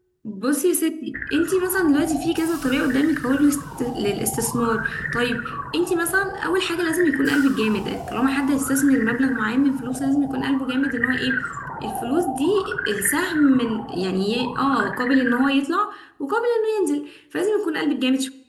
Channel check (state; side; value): identical; both; correlation 1.00